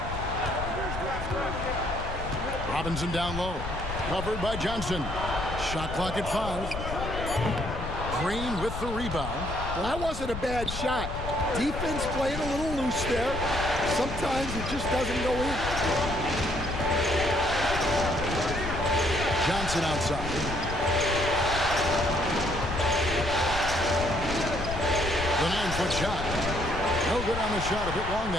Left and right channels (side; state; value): left; noise; rumble, 7 dB below the sound